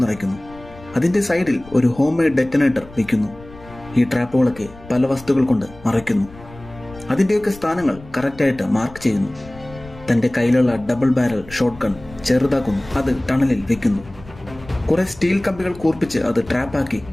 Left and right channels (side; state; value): left; noise; rumble, 19 dB below the sound